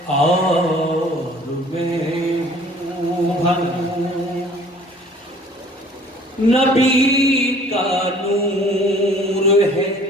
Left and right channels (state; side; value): normal; both; correlation 0.52